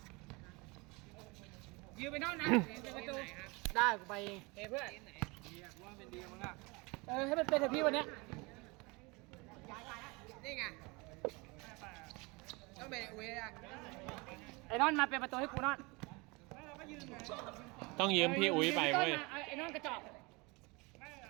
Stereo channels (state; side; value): quieter; left; 26.5 dB